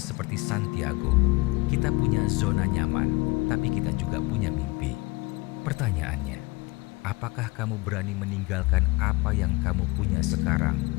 seperti Santiago. Kita punya zona nyaman, tapi kita juga punya mimpi. Pertanyaannya, apakah kamu berani meninggalkan apa yang kamu punya sekarang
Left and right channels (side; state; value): right; quieter; 23.8 dB